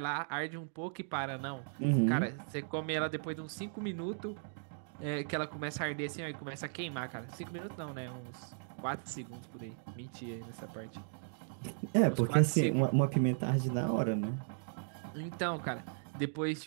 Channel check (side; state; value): left; silent; digital silence